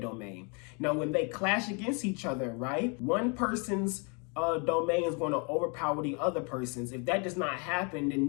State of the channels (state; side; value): quieter; right; 34.8 dB